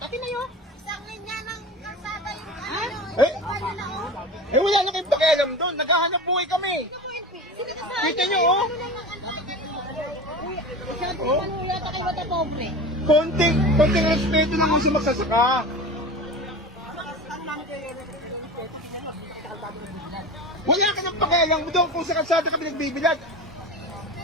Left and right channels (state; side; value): normal; both; correlation 0.31